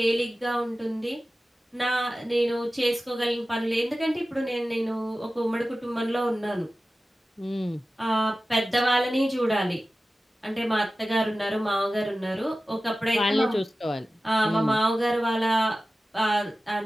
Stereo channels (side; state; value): both; normal; correlation 0.95